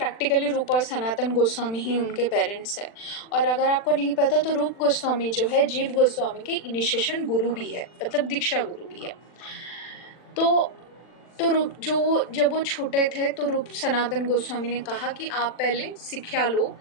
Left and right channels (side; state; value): right; late; 40 ms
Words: रूप और सनातन गोस्वामी ही उनके पेरेंट्स हैं। और अगर आपको नहीं पता तो रूप गोस्वामी जो है जीव गोस्वामी के इनिशिएशन गुरु भी है, मतलब दीक्षा गुरु भी है। तो रूप जब वो छोटे थे तो रूप सनातन गोस्वामी ने कहा कि आप पहले शिक्षा लो।